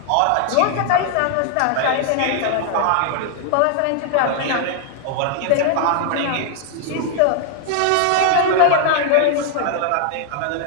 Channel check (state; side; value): different; both; correlation 0.00